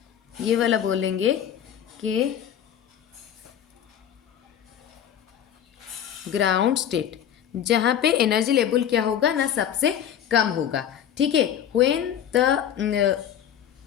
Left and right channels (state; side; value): quieter; right; 9.7 dB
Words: ये वाला बोलेंगे कि ग्राउंड स्टेट, जहाँ पे एनर्जी लेवल क्या होगा ना सबसे कम होगा, ठीक है।